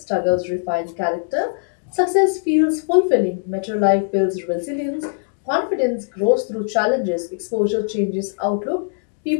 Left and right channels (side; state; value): right; silent; digital silence